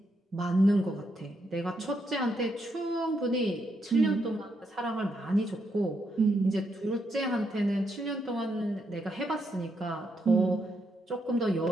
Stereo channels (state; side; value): normal; both; correlation 0.79